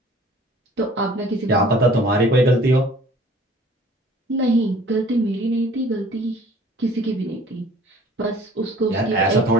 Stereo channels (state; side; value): normal; both; correlation 0.51